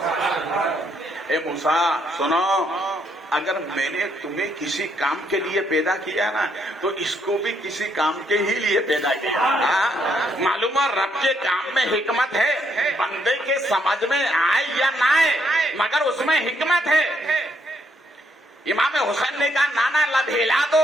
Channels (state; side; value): normal; both; correlation 0.73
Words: اے موسیٰ سنو، اگر میں نے تمہیں کسی کام کے لیے پیدا کیا نا تو اس کو بھی کسی کام کے ہی لیے پیدا کیا۔ معلوم ہے رب کے کام میں حکمت ہے، بندے کے سمجھ میں آئے یا نہ آئے مگر اس میں حکمت ہے۔ امام حسین نے کہا نانا لب ہلا دو